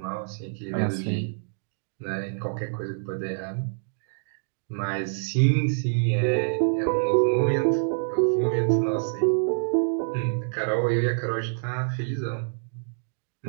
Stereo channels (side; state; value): left; silent; digital silence